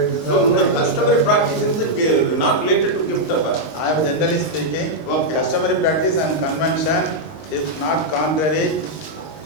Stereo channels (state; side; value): late; right; 19 ms